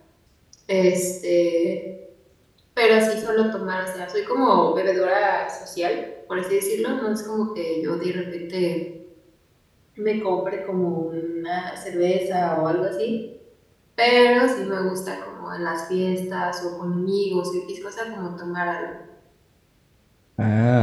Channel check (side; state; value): both; identical; correlation 1.00